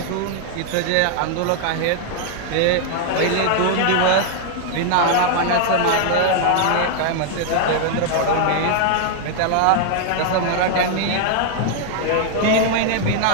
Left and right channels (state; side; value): different; both; correlation 0.00